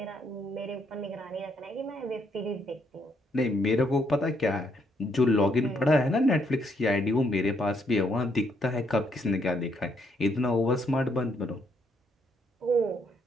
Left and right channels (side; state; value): both; normal; correlation 0.73